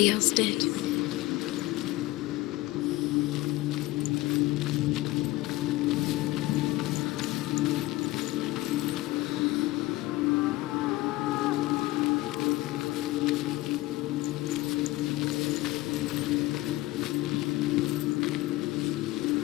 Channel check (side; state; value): right; quieter; 18.5 dB